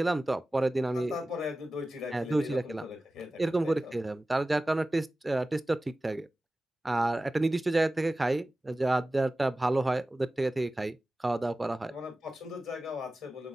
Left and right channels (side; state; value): both; normal; correlation 0.96